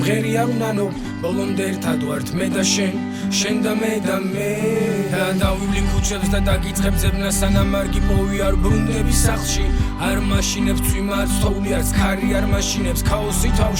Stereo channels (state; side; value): identical; both; correlation 1.00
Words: არ უნანო ბოლომდე ერთად ვართ მე და შენ და მე და დავივლი ქუჩებს და დაგიწყებ ძებნა სანამ არ გიპოვი არ ბრუნდები სახლში არ მაშინებს წვიმა არ ცხოვლი არც ქარი არ მაშინებს ქაოსი